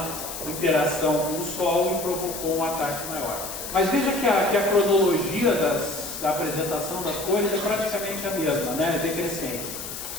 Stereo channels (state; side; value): noise; left; hiss, 8 dB below the sound